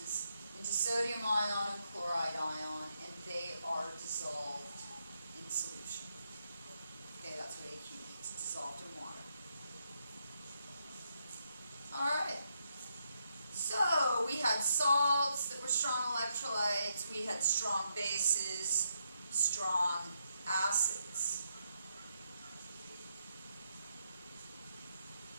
into sodium ion and chloride ion, and they are dissolved in solution. Okay, that's what AQ means. It's dissolved in water. Alright. So we had salts that were strong electrolytes, we had strong bases, strong acids.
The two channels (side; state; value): both; inverted; correlation -0.79